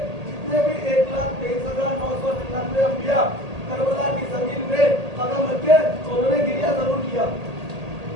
जितने भी 1,23,999 अंबिया करबला की जमीन में कदम रखे तो उन्होंने गिरिया जरूर किया।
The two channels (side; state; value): left; late; 1.8 ms